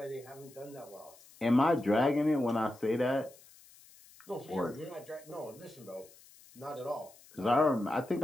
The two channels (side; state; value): left; noise; hiss, 24 dB below the sound